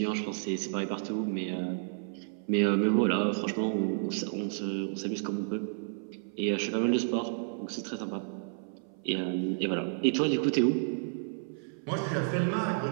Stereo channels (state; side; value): silent; left; 57 dB below the other